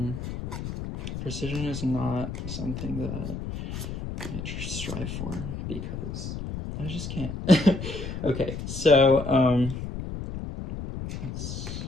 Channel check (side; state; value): left; noise; rumble, 6 dB below the sound